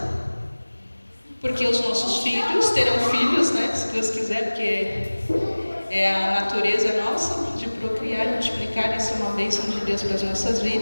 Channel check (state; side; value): inverted; both; correlation -1.00